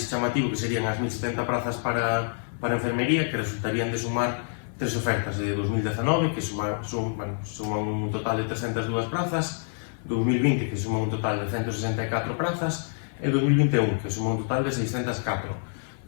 chamativo, que serían as 1070 prazas para enfermería, que resultarían de sumar tres ofertas de 2019, que suman un total de 302 prazas, 2020, que suman un total de 164 prazas, e 2021, que suma un total de 604.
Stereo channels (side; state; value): right; silent; 56 dB below the other